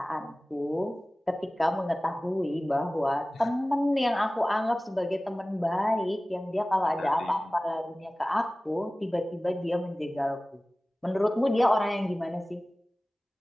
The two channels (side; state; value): both; normal; correlation 0.98